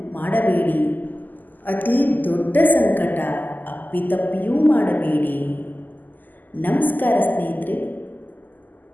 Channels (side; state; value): right; late; 0.086 ms